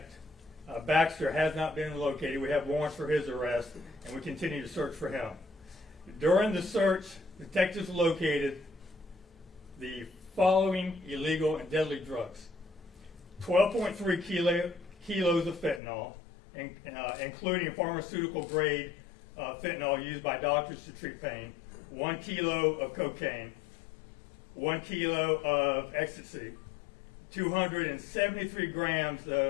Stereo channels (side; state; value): right; drops out; at 15.8 s